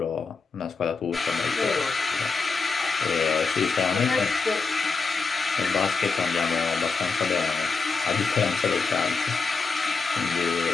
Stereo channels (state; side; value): quieter; right; 4.5 dB